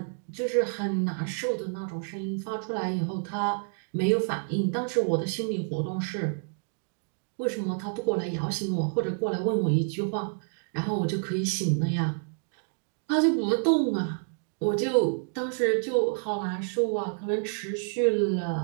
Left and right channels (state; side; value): silent; left; 59 dB below the other